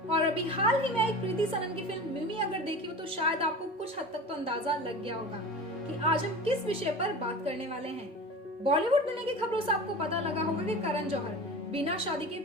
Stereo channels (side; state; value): both; normal; correlation 0.34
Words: और अभी हाल ही में एक प्रीति सनन की फिल्म मिमी अगर देखी हो तो शायद आपको कुछ हद तक तो अंदाजा लग गया होगा कि आज हम किस विषय पर बात करने वाले हैं। बॉलीवुड दुनिया की खबरों से आपको पता लगा होगा कि करण जौहर बिना शादी के